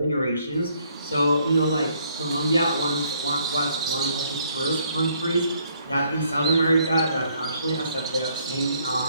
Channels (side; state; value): both; inverted; correlation -0.68